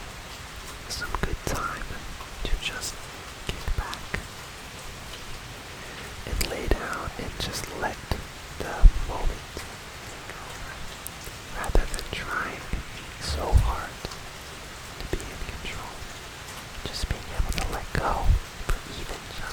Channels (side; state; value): both; identical; correlation 1.00